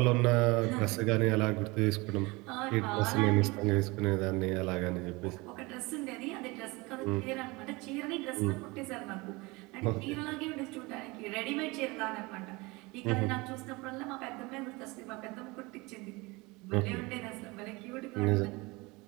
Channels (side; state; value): left; quieter; 24.3 dB